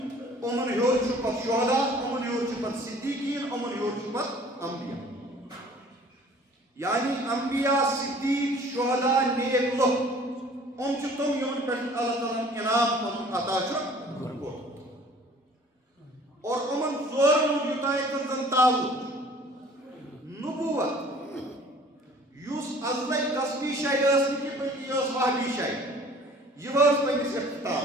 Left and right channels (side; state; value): both; normal; correlation 0.51